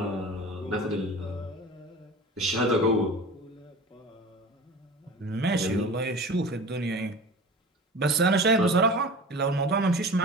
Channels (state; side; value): normal; both; correlation 0.36